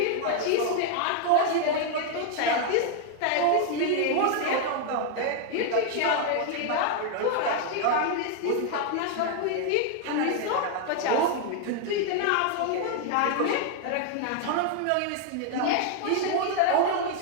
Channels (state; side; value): different; both; correlation 0.00